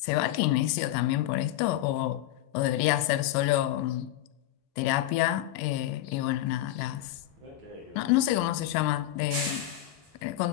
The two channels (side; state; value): right; quieter; 13.7 dB